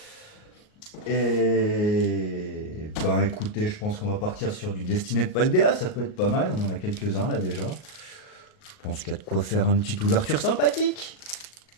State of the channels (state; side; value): late; right; 38 ms